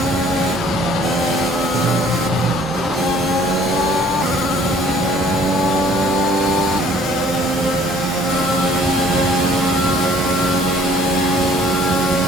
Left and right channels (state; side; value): normal; both; correlation 0.56